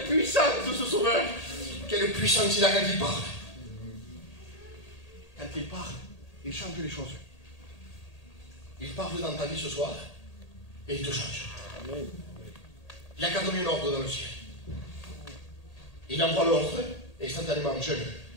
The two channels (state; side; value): late; right; 1.8 ms